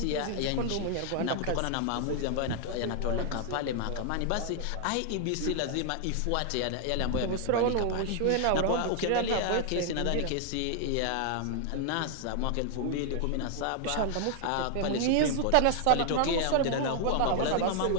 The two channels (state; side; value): different; both; correlation 0.00